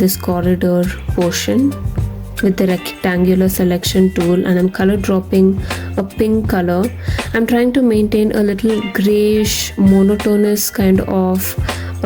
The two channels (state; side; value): identical; both; correlation 1.00